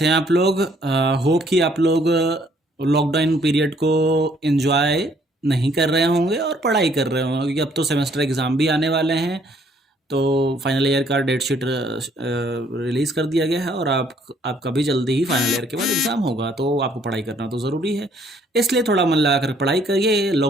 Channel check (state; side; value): normal; both; correlation 0.64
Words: हैं आप लोग। होप कि आप लोग लॉकडाउन पीरियड को एंजॉय नहीं कर रहे होंगे और पढ़ाई कर रहे होंगे, क्योंकि अब तो सेमेस्टर एग्ज़ाम भी आने वाले हैं। तो फाइनल ईयर का डेट शीट रिलीज़ कर दिया गया है और आपका भी जल्दी ही फाइनल ईयर के बाद एग्ज़ाम होगा, तो आपको पढ़ाई करना तो ज़रूरी है। इसलिए थोड़ा मन लगा कर पढ़ाई करिए,